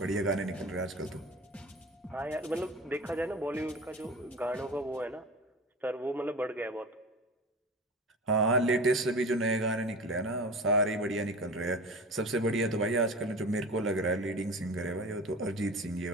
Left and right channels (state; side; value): normal; both; correlation 0.34